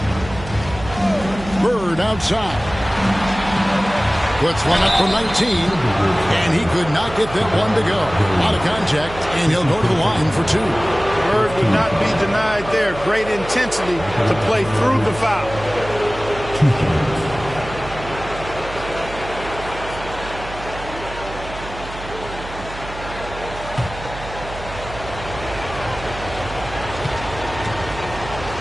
Bird outside. Puts one up from 19. And he could not get that one to go. Out of contact, and he'll go to the line for 2. Bird would not be denied there. Great intensity to play through the foul.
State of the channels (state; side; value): noise; right; hum, 13 dB below the sound